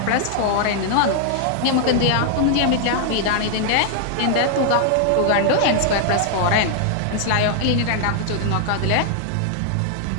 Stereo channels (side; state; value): both; different; correlation -0.01